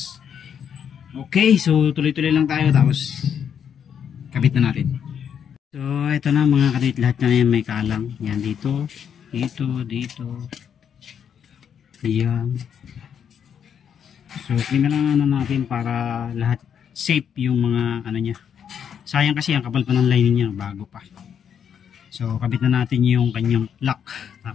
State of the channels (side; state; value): right; quieter; 8.1 dB